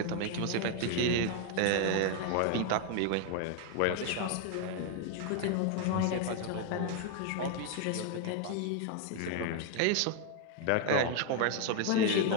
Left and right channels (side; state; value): both; different; correlation 0.00